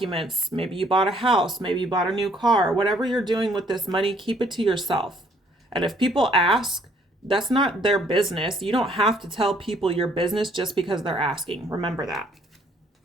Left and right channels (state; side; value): normal; both; correlation 0.64